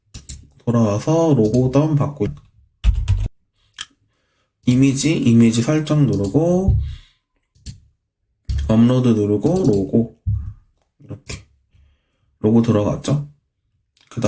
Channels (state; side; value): identical; both; correlation 1.00